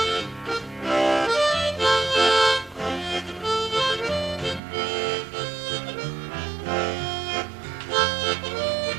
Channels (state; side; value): drops out; left; at 4.6 s